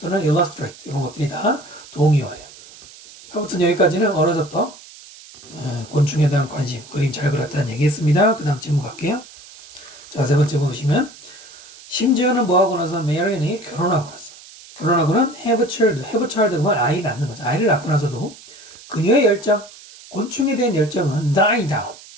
illustrate 이런 것들이 다 동의어예요. 아무튼 여기까지는 어려서부터 곤충에 대한 관심, 그림 잘 그렸다는 얘기했습니다. 그 다음 질문 갈게요. 자, 세 번째 보시면 심지어는 뭐하고 나서 메리안이 결혼하고 나서 결혼하고는 have a child 그러면 아이를 낳는 거죠. 아이를 낳고 나서도 그녀의 열정, 곤충에 대한 열정은 die down,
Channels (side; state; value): right; noise; hiss, 20 dB below the sound